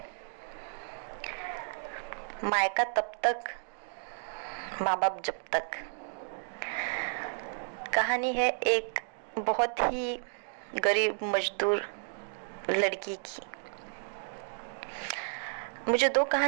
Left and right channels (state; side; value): silent; left; digital silence